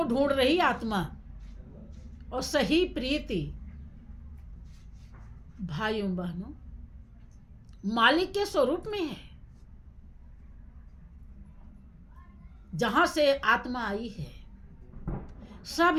ढूंढ रही आत्मा, और सही प्रीति भाइयों बहनों मालिक के स्वरूप में है। जहां से आत्मा आई है,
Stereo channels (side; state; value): both; identical; correlation 1.00